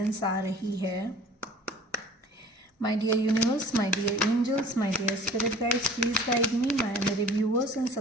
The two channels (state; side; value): normal; both; correlation 0.47